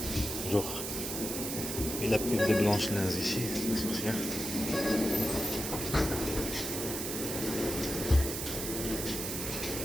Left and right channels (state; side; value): noise; right; hiss, 4 dB below the sound